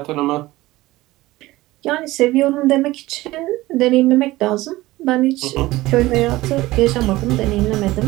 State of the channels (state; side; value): quieter; left; 18.4 dB